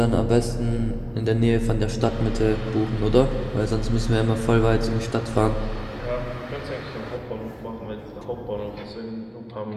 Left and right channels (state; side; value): identical; both; correlation 1.00